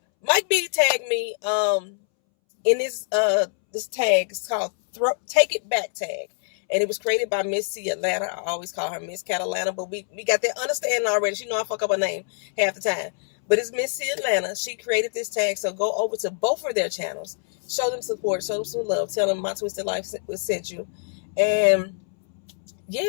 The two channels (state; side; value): silent; right; 62 dB below the other